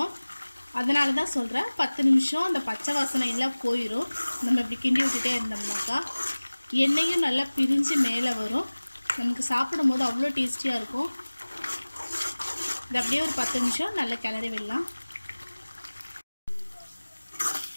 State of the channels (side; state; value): both; inverted; correlation -1.00